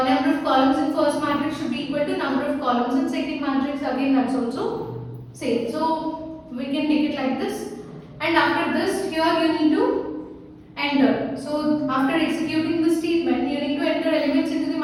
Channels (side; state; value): both; identical; correlation 1.00